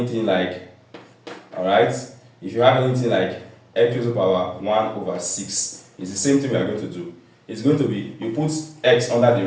like, alright, if you have anything like x to the power 1 over 6, it's the same thing we are going to do. It's going to be, you put x under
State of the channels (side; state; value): both; identical; correlation 1.00